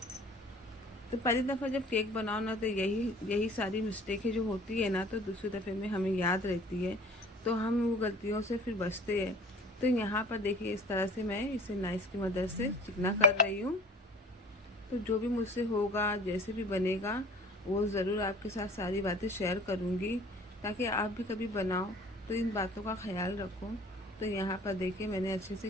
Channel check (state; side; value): normal; both; correlation 0.47